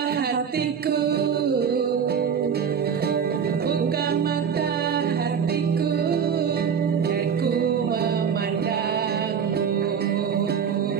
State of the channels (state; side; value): quieter; left; 7.2 dB